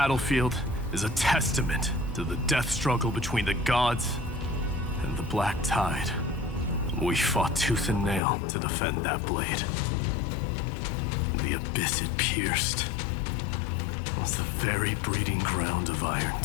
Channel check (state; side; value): drops out; right; at 8.2 s